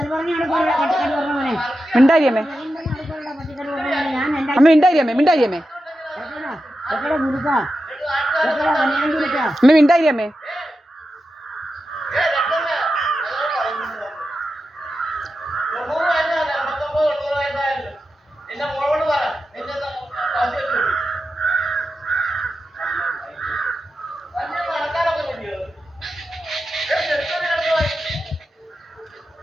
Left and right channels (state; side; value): normal; both; correlation 0.90